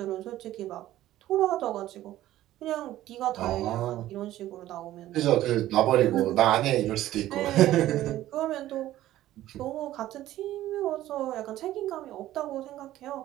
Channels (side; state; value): left; quieter; 14.3 dB